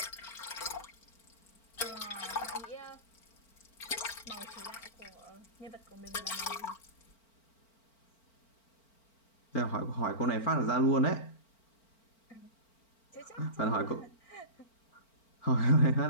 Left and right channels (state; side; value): late; right; 4.4 ms